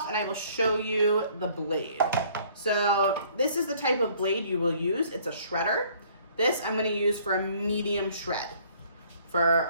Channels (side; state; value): both; inverted; correlation -0.58